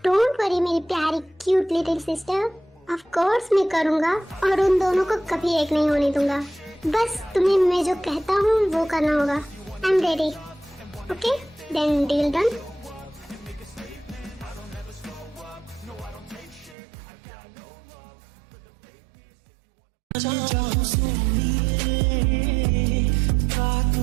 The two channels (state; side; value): drops out; left; at 16.8 s